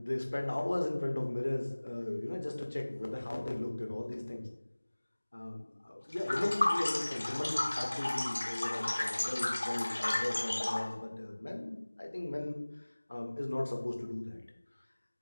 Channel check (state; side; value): inverted; both; correlation -1.00